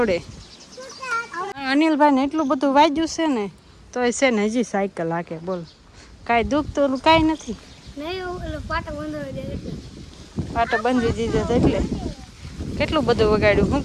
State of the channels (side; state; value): both; identical; correlation 1.00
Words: અનિલભાઈ ને એટલું બધું વાગ્યું છે ને તો છે ને હજી સાયકલ હાકે બોલ કાંઈ દુઃખ તો કાંઈ નથી. પાટો બંધી દીધો એટલે કેટલું બધું વગાડ્યું. શું